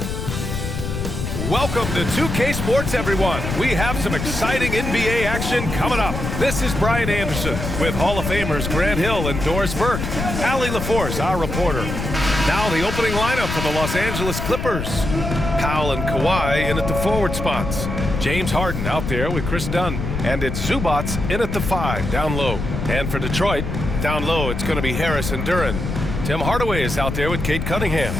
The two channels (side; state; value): left; noise; rumble, 4 dB below the sound